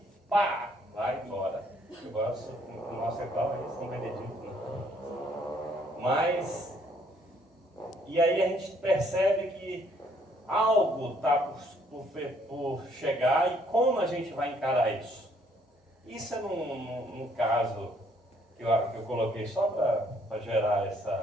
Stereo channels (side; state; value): both; normal; correlation 0.65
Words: pá, vai embora. Eu gosto, o nosso é qual é São Benedito. Né? Mas, e aí a gente percebe que algo está por chegar e como a gente vai encarar isso? Isso é num caso que eu coloquei só para gerar